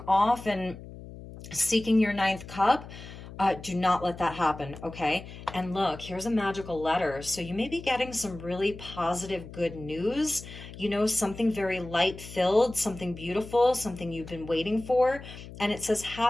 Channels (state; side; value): noise; left; hum, 14 dB below the sound